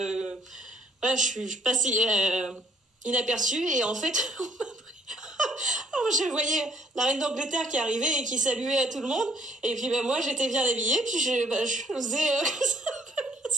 voilà, je passe inaperçue. Et en fait, je voyais la reine d'Angleterre qui arrivait et qui saluait à tout le monde. Et puis, moi, j'étais bien habillée. Puis, je faisais comme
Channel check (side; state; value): both; normal; correlation 0.63